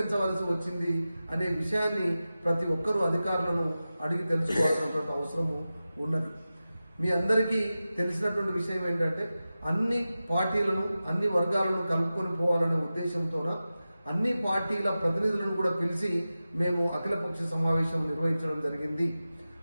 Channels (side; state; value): both; inverted; correlation -0.95